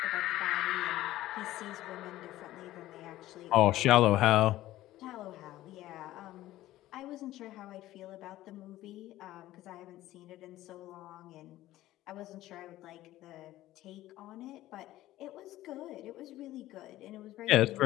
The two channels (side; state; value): right; quieter; 15.3 dB